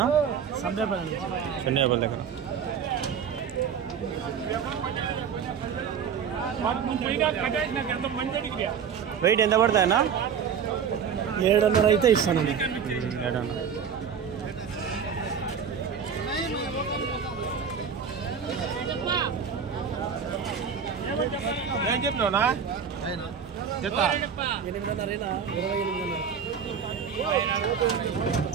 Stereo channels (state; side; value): quieter; left; 7.2 dB